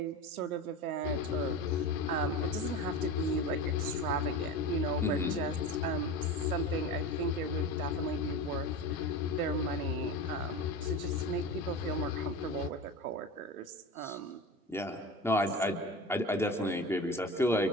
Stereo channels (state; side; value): normal; both; correlation 0.29